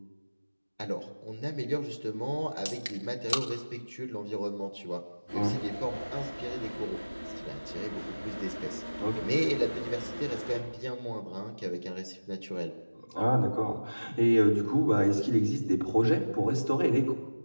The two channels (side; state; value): both; inverted; correlation -1.00